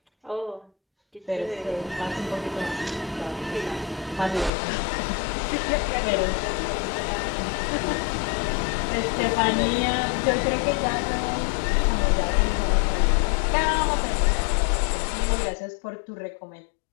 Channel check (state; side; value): drops out; right; at 4.5 s